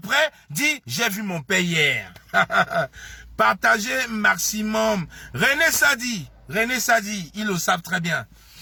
dit j'ai vu mon père hier. Partagez maximum. René Sadi, ils le savent très bien.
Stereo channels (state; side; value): identical; both; correlation 1.00